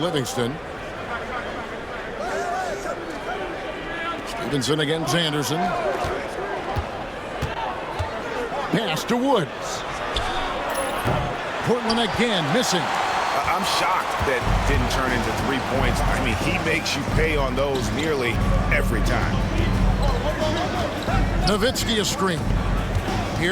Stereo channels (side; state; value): both; identical; correlation 1.00